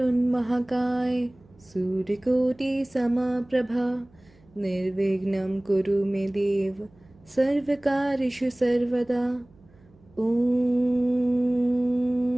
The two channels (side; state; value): right; noise; hum, 29 dB below the sound